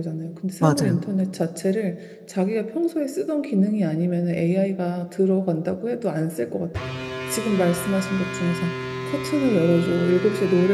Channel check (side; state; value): both; identical; correlation 1.00